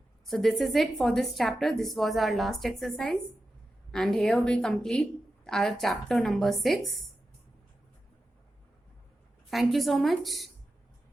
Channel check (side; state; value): both; normal; correlation 0.91